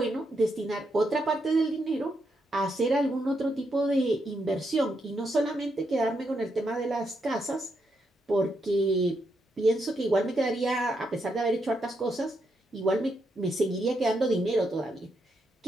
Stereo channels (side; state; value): both; normal; correlation 0.81